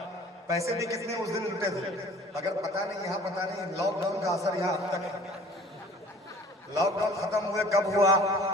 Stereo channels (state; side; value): normal; both; correlation 0.49